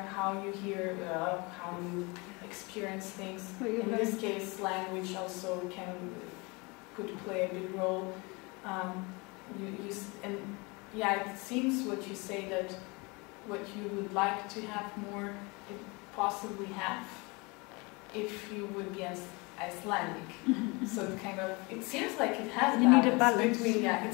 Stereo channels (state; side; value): quieter; right; 27.4 dB